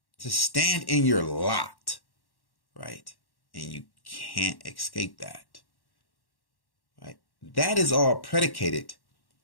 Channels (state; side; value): late; right; 1.1 ms